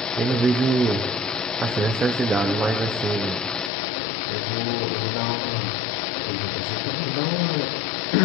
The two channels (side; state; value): right; drops out; at 3.7 s